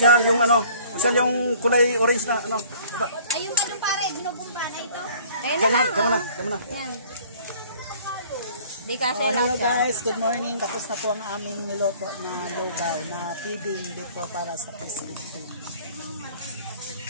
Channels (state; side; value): inverted; both; correlation -0.53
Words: yung kusyal yung kulay orange na baba. Ayun ka dun pare. Ginubumba na ito. Ayan na lang. Tama na. Yan. Di kasi Hello lang. guys, good morning. Tapos na po ang aming niloto na lugaw na feeding dito para sa Pacific Food.